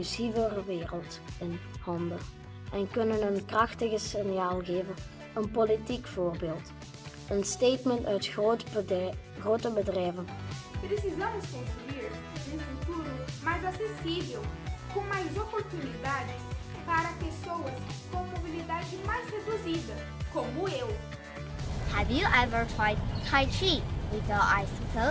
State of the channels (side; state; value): both; identical; correlation 1.00